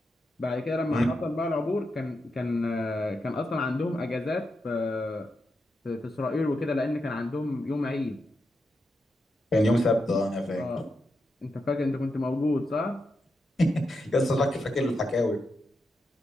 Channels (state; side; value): normal; both; correlation 0.86